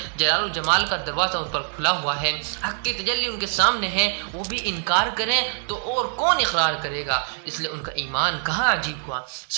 جلال و جمال کا دروازہ ان پر کھلا ہوا ہے، حق کی تجلی ان کے سامنے ہے، وہ بھی انکار کریں تو اور کون اقرار کرے گا؟ اس لیے ان کا ایمان کہاں عجیب ہوا؟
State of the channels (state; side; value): silent; left; digital silence